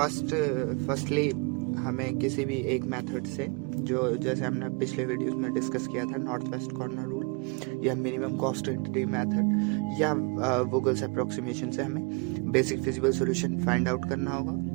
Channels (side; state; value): left; quieter; 31.9 dB